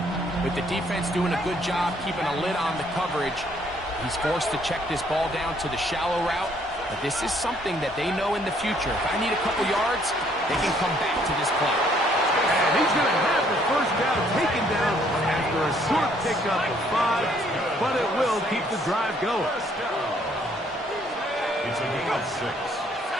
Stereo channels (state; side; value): normal; both; correlation 0.65